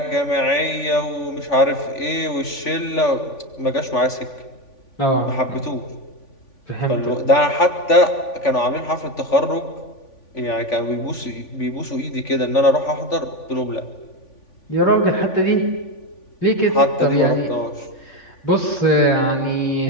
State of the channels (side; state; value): right; late; 3.5 ms